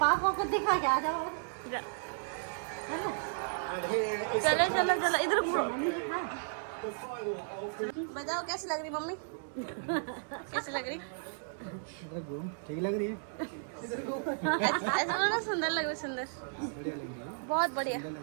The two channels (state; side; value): silent; left; 55 dB below the other